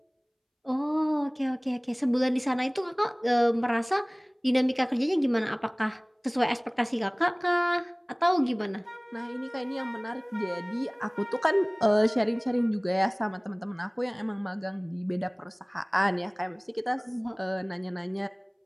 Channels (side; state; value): both; identical; correlation 1.00